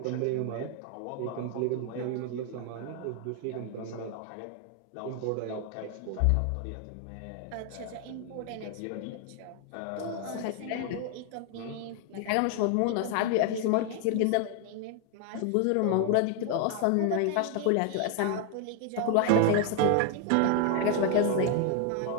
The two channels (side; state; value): both; different; correlation 0.00